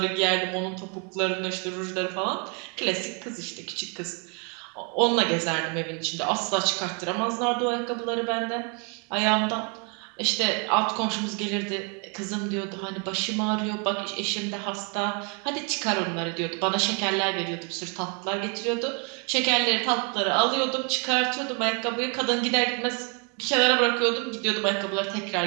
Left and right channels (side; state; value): left; quieter; 36.1 dB